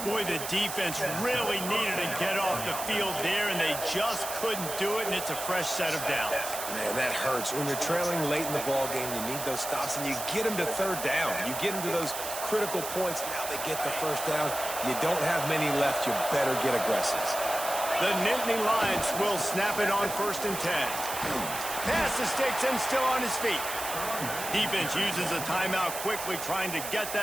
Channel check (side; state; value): right; noise; hiss, 6 dB below the sound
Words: Boy, the defense really needed to get off the field there, and they just couldn't do it, and it's a fresh set of downs. Man, that hurts. When you're trailing late in the ball game, you need those stops, and you get them to third down. You get them to those critical points. Now they get the first down. You don't have many left. You better get aggressive. The Nittany Lions will snap it on 1st and 10. Pass the sticks and still on his feet. Defense uses a timeout quickly, trying to get